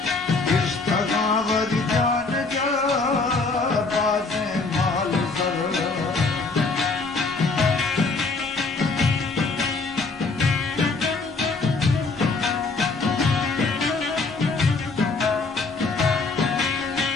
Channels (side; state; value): right; quieter; 3.9 dB